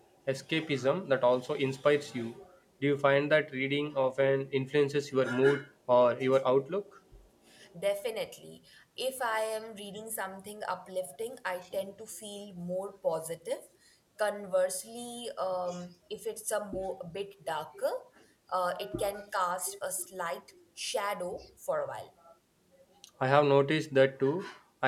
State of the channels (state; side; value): identical; both; correlation 1.00